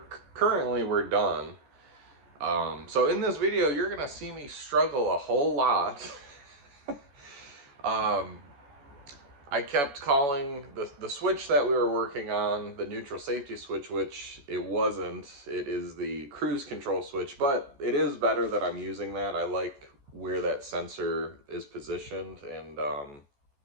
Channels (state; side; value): late; left; 14 ms